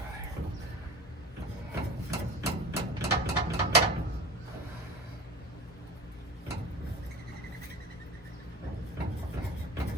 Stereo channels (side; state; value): both; normal; correlation 0.36